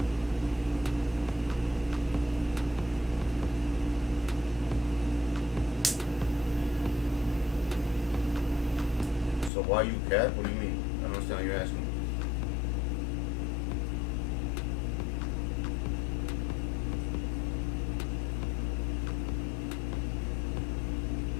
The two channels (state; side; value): drops out; right; at 9.5 s